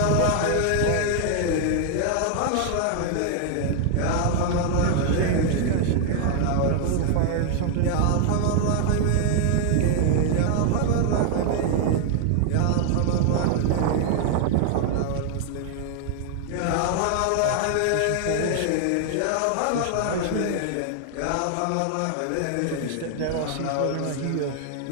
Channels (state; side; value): different; both; correlation 0.00